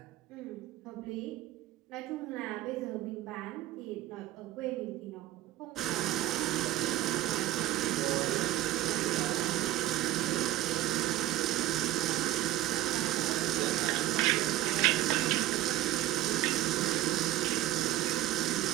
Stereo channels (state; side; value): quieter; left; 14.9 dB